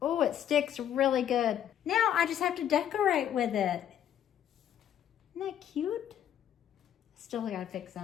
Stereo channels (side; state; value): right; quieter; 10.4 dB